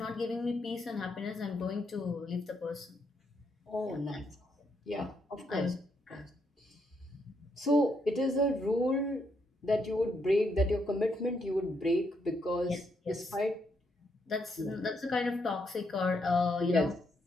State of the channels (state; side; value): normal; both; correlation 0.77